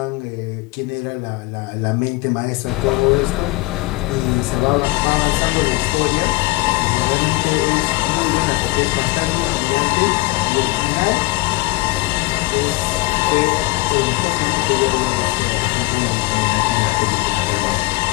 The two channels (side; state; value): right; quieter; 20.8 dB